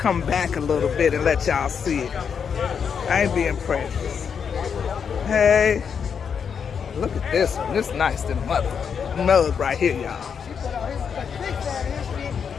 back a little bit and let y'all see it. I ain't being prejudiced. Hey, look at this one. This nice than mud right here, y'all.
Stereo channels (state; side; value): quieter; right; 6.8 dB